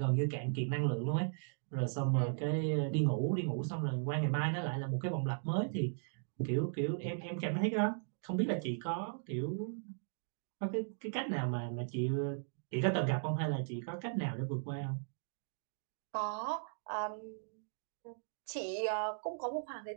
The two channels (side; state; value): left; silent; digital silence